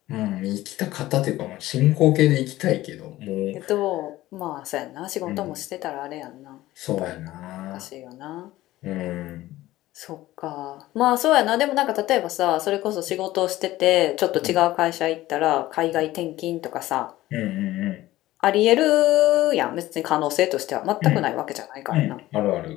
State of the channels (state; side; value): quieter; right; 16.3 dB